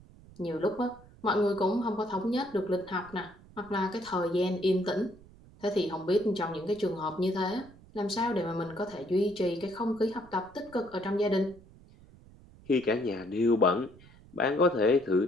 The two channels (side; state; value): right; noise; rumble, 23 dB below the sound